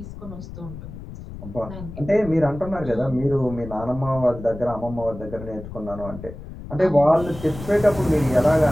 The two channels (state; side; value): noise; left; rumble, 12 dB below the sound